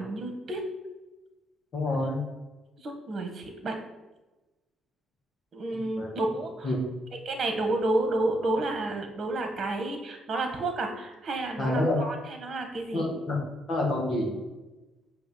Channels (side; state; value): both; normal; correlation 0.76